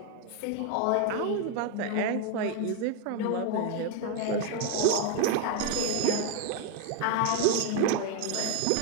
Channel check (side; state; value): both; different; correlation 0.01